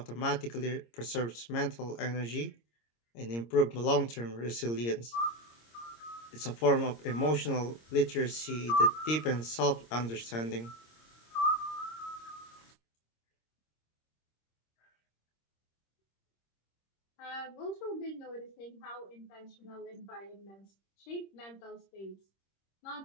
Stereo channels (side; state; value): right; late; 26 ms